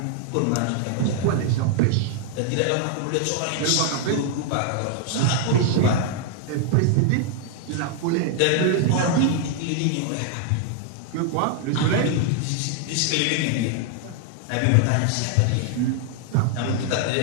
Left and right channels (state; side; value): different; both; correlation 0.00